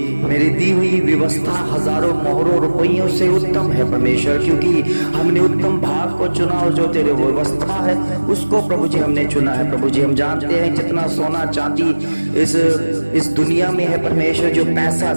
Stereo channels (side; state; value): both; inverted; correlation -1.00